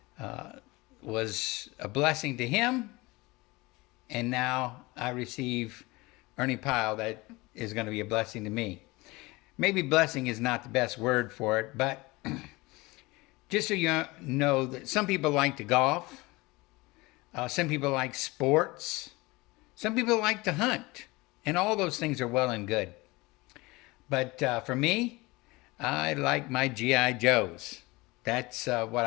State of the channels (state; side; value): quieter; right; 22.7 dB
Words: was a blessing to him, and now I receive Ernie Pyle that is going to be a blessing to me. Maybe blessing is not the best word for it, but just so you know that some people like to golf, some people like sports, some people like to hunt, and all those things are well and good. But for me, I like my G.I. Joes. That's what